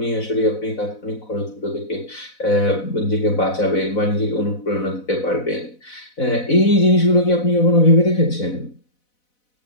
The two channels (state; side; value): late; right; 4.0 ms